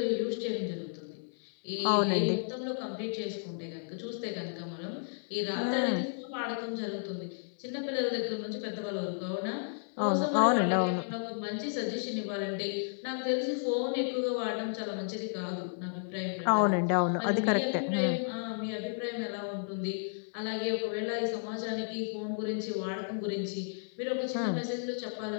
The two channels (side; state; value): right; silent; 56 dB below the other